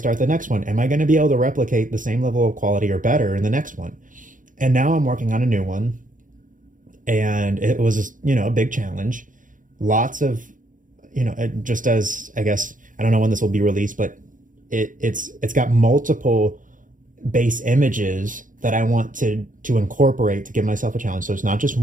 the next one, am I going to be able to replicate the same level of quality or better in the next one? And now I'm working on a new one, and it was, a big challenge. Lots of, just as, I guess, I don't know when this will be released, but it's got multiple base images that I want to incorporate to give myself a challenge. So it's not just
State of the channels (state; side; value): late; left; 0.38 ms